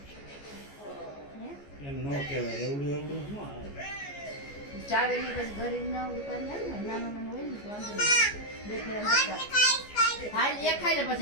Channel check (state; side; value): late; right; 14 ms